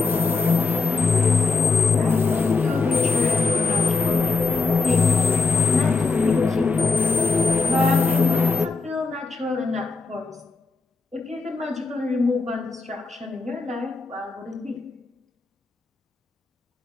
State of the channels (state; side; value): quieter; right; 4.2 dB